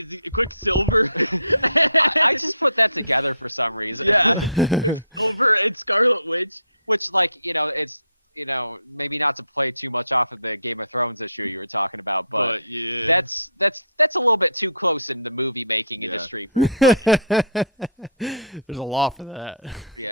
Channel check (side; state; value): both; inverted; correlation -0.56